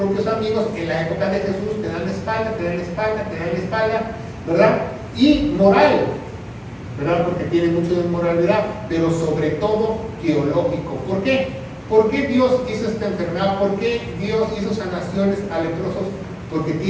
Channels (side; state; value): both; identical; correlation 1.00